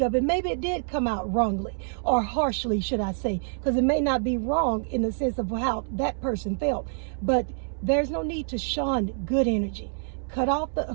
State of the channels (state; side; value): silent; left; 60 dB below the other